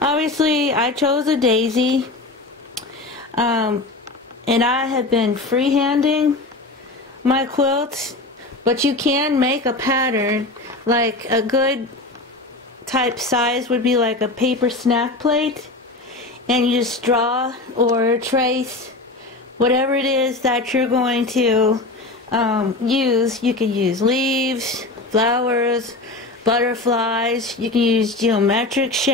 Obviously, I chose a daisy. And I have been freehanding my quilts, but you can make a pattern. Like a good type size would be like a paper snack plate, and you just draw or trace whatever it is that you're going to use. You can use leaves, flowers, butterflies. You can use geometric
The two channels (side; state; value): right; quieter; 3.0 dB